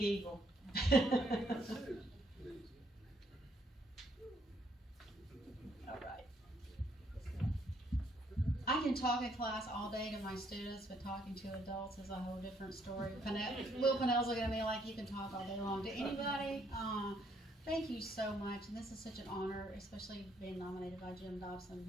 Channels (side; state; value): both; normal; correlation 0.69